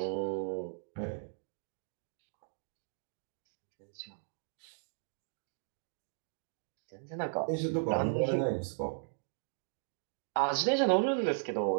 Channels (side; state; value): left; silent; digital silence